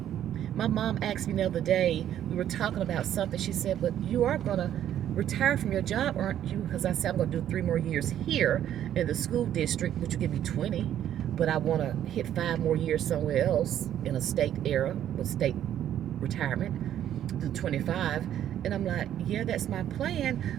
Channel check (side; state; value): left; quieter; 10.9 dB